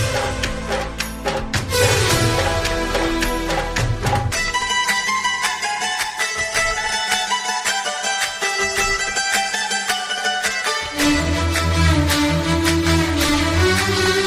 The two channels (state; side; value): identical; both; correlation 1.00